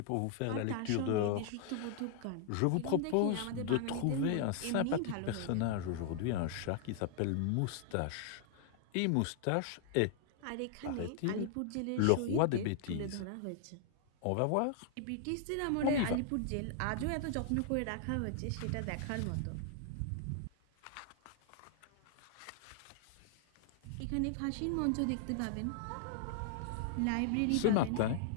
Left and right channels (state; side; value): different; both; correlation 0.00